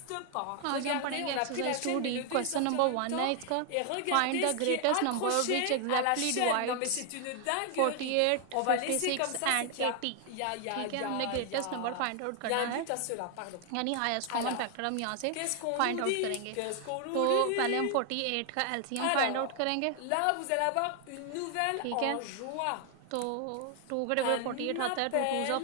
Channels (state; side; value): different; both; correlation 0.00